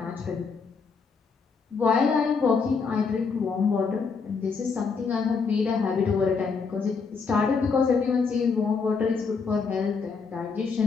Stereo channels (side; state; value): right; quieter; 5.2 dB